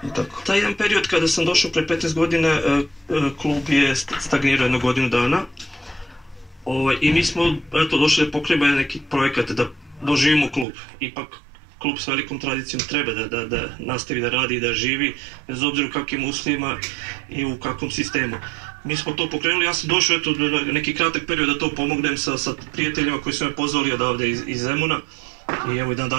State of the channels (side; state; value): left; drops out; at 10.7 s